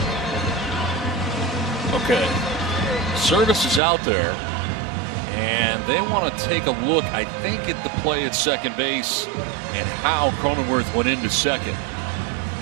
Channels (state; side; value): drops out; left; at 3.8 s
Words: Okay. Service is out there. And they want to take a look, I think, at the play at second base and how Cronenworth went into second.